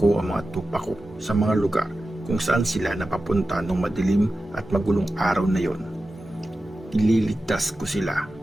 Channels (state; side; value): normal; both; correlation 0.93